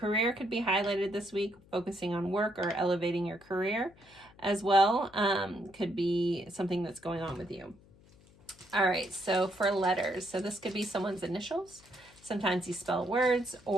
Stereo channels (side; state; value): left; noise; hum, 26 dB below the sound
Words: could be highlighted this week, focusing on work or elevating your career as well. Could be something that's going on with you. All right, so for letters, so this could be someone's initials. Sometimes you spell words